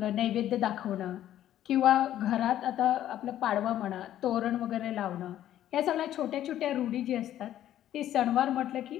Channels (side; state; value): right; quieter; 12.1 dB